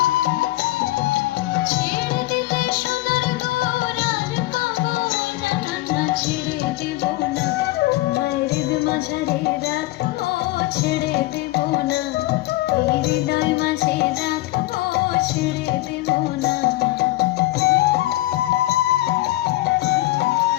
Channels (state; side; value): quieter; right; 18.0 dB